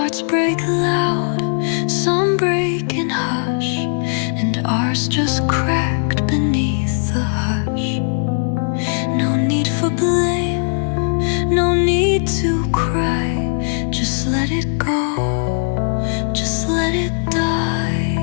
break loud, some break in hush, and ours just cracked beneath the hush. No need for blame, no need to cry. Just let it go, just let it die.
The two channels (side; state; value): right; silent; 64 dB below the other